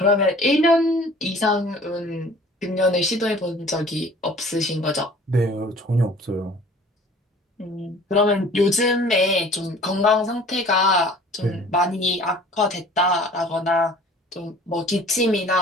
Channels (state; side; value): normal; both; correlation 0.49